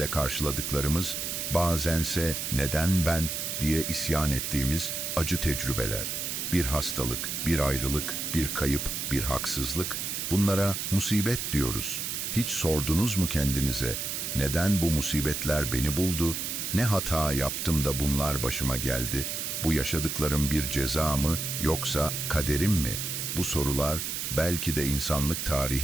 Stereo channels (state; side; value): noise; right; hiss, 3 dB below the sound